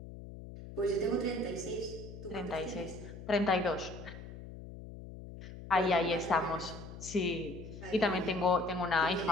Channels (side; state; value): left; noise; hum, 13 dB below the sound